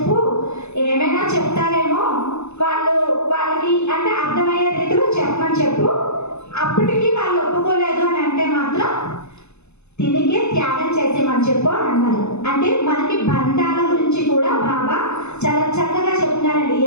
ఏమైనా చెప్తారేమో, వాళ్ళకి అంటే అర్థమయ్యే రీతిలో చెప్పమని చెప్పు. అప్పటికి వాళ్ళు ఒప్పుకోలేదు అని అంటే మాత్రం తిరిగే త్యాగం చేసేమని చెప్పు అని అన్నారు. అంటే మనకి బంధాల గురించి కూడా బాబా చాలా చక్కగా చెప్తున్నారండి.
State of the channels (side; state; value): right; late; 0.81 ms